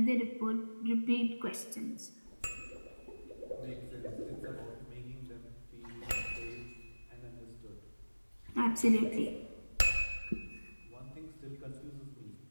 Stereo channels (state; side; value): inverted; both; correlation -1.00